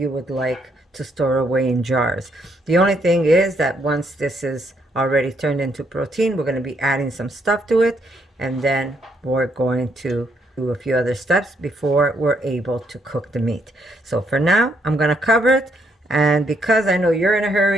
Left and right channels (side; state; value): both; normal; correlation 0.73